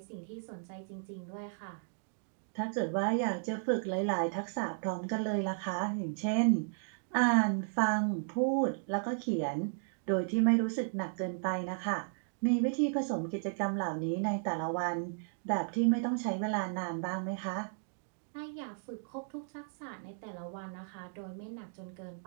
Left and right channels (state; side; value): silent; left; digital silence